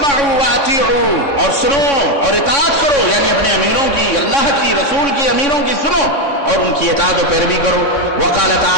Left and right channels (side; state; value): right; late; 3.6 ms